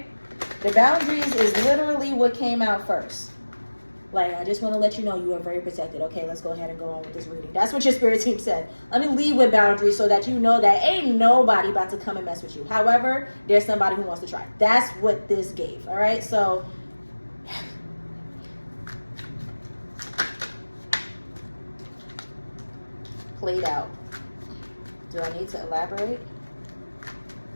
The boundaries is literally what came out first. Like, I just want to let you know you are very protected. Okay, let's go ahead and go on with this reading. That's what your spirit team said. Let me leave with boundaries so that you know that ain't nobody about to come and mess with you. However, there's somebody who wants to try. That's what this gave, all right? So, played out. Do I need to elaborate?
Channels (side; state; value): both; inverted; correlation -1.00